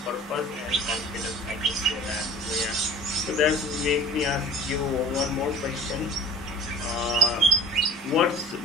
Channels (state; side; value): normal; both; correlation 0.44